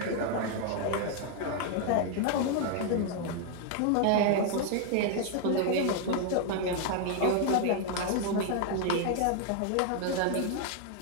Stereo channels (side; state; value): both; different; correlation 0.00